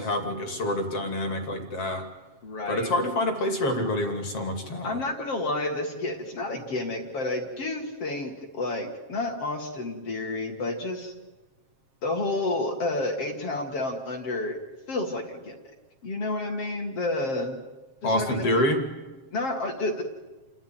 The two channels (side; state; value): right; late; 7.5 ms